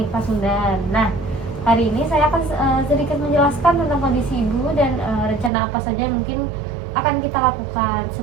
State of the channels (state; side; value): drops out; left; at 5.5 s